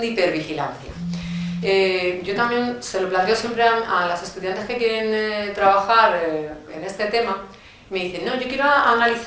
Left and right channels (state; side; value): identical; both; correlation 1.00